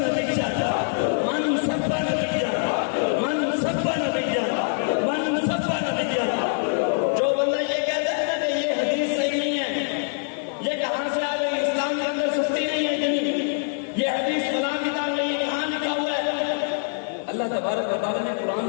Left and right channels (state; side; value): silent; right; digital silence